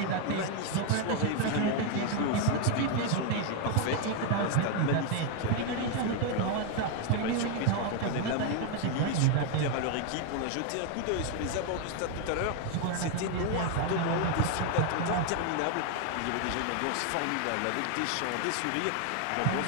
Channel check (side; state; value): both; different; correlation 0.01